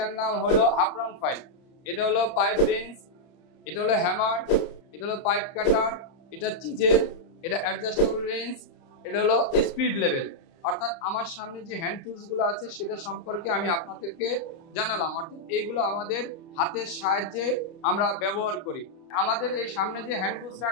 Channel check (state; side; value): late; right; 30 ms